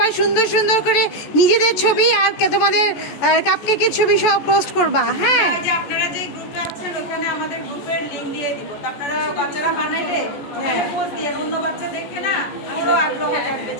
সুন্দর সুন্দর করে নিজেদের ছবি আর তোমাদের কাপকেকের ছবি সব পোস্ট করবা। হ্যাঁ, আপনারা যে গ্রুপে আছেন ওখানে আমাদের গ্রুপের লিংক দিয়ে দিব। আপনারা বাচ্চারা বানাইলে পোস্ট দিয়ে অন্য বাচ্চা দেখে না ওরও আগ্রহ থাকবে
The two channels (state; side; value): late; right; 14 ms